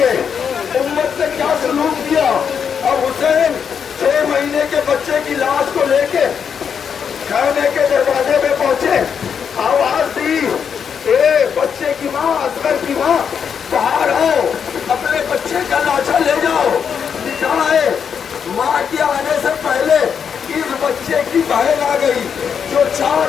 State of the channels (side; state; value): right; quieter; 7.1 dB